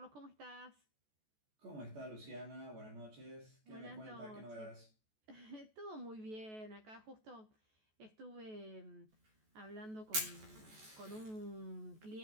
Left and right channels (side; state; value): left; late; 14 ms